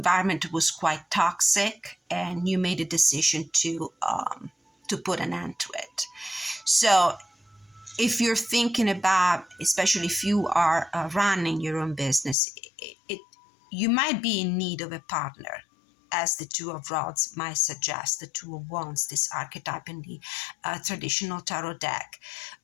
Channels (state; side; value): drops out; right; at 12.4 s